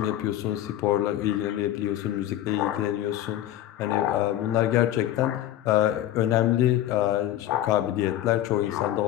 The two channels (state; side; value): quieter; right; 12.9 dB